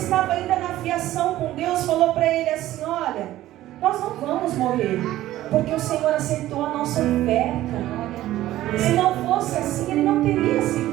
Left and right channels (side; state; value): left; quieter; 14.7 dB